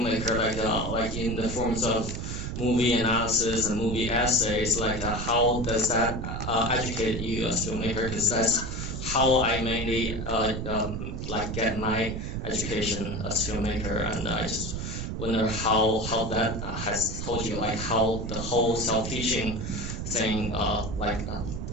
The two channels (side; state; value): right; noise; rumble, 5 dB below the sound